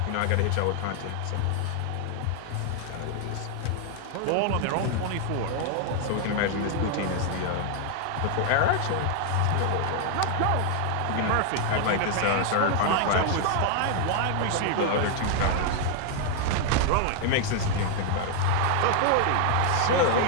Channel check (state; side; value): different; both; correlation 0.00